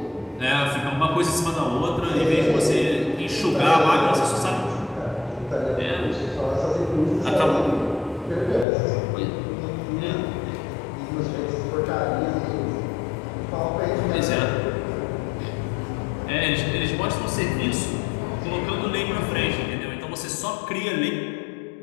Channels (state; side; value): drops out; right; at 8.7 s